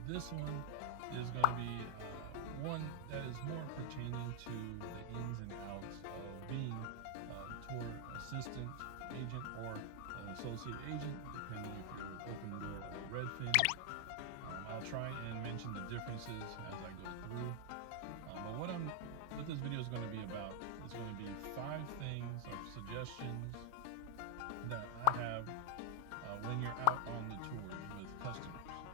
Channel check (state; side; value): different; both; correlation 0.00